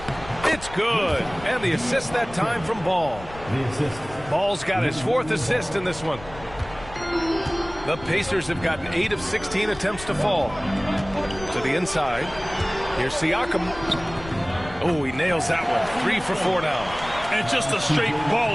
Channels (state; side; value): noise; left; rumble, 16 dB below the sound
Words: It's good. And the assist that time from Ball. Ball's got his 4th assist in this one. The Pacers have gotten 8 of 16 attempts to fall. To the inside. Here's Siakam. Oh, he nails that one. 3 for 4 now. And just a straight